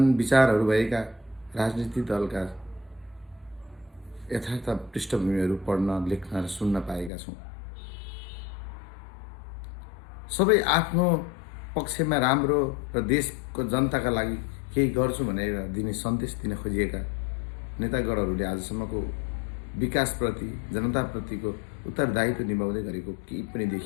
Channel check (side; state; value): right; drops out; at 7.1 s